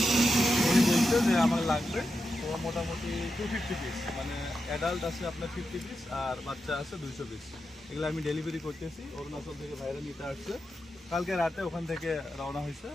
উনি বলছে যে আমার লাগবে। তো মোটামুটি 250 পিস, মানে অ্যাডাল্ট আছে আপনার 50 পিস আর বাচ্চা আছে 200 পিস। এগুলো আমি ডেলিভারি করতেছি। অরুণাচল থেকে ভাইরা নিতে আসছে, কালকে রাতে ওখান থেকে রওনা হয়েছে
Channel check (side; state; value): both; normal; correlation 0.88